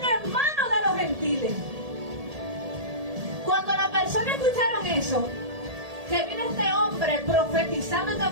en manos de los gentiles. Cuando las personas escucharon eso, que vino este hombre profetizando esta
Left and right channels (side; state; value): left; late; 1.8 ms